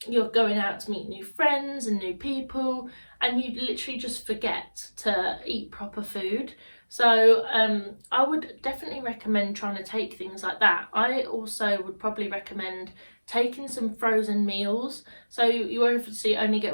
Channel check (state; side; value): inverted; both; correlation -1.00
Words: you're going out to meet new friends and new people, and you literally just forget to eat proper food. So I would definitely recommend trying to take things like that. I also would probably recommend taking some frozen meals. So you obviously only